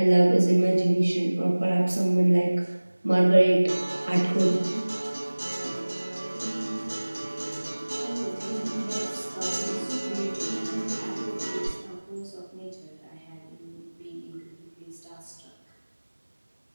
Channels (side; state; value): both; inverted; correlation -1.00